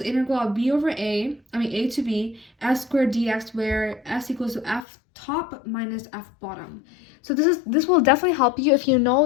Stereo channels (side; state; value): right; drops out; at 4.9 s